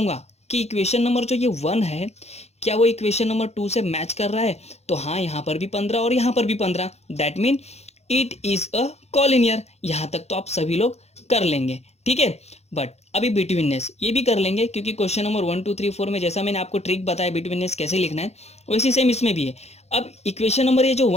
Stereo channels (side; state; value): right; late; 0.31 ms